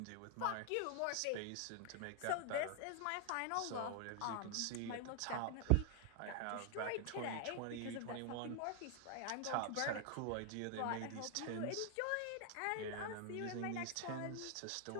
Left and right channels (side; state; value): both; different; correlation 0.00